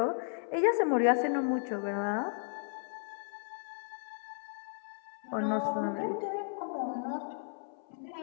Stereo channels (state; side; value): silent; right; 55 dB below the other